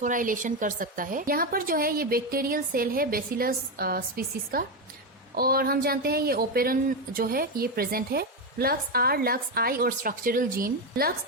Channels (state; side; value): normal; both; correlation 0.10